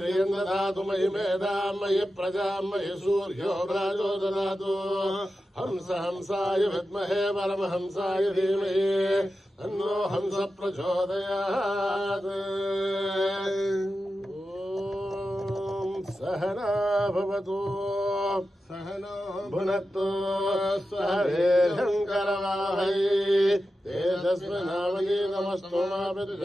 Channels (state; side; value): normal; both; correlation 0.91